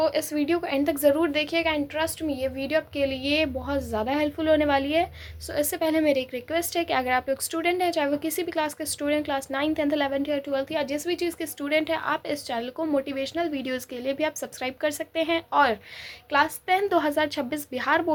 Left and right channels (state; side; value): identical; both; correlation 1.00